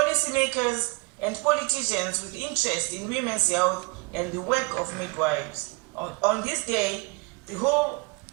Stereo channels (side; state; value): left; quieter; 28.4 dB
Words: and politicians with interest in women's health and the work of midwives. On this day, the whole